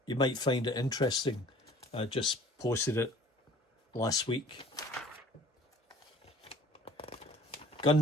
You might find it interesting. I just posted it last week.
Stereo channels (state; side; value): normal; both; correlation 0.50